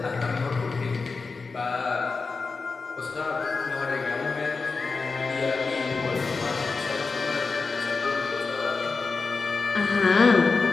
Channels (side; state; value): right; quieter; 4.4 dB